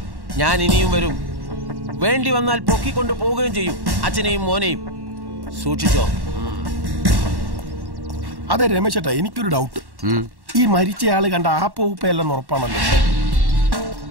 ഞാൻ ഇനിയും വരും. വേണ്ടി വന്നാൽ പൊക്കിക്കൊണ്ട് പോവുകയും ചെയ്യും, അച്ഛനെയും മോനെയും. സൂക്ഷിച്ചോ. അതെ രമേശ് ചേട്ടാ, എനിക്കൊരു ഡൗട്ട്. ഈ മരിച്ചയാള് കണ്ട ആ പൂപ്പയല്ലെന്ന് ഉറപ്പാണല്ലോ.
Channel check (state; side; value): late; left; 1.1 ms